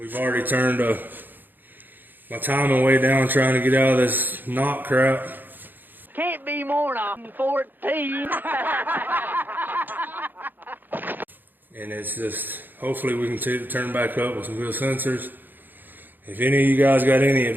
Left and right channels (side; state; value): left; late; 0.090 ms